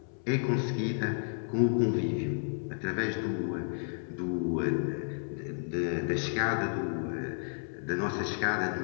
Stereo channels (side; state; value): right; silent; 57 dB below the other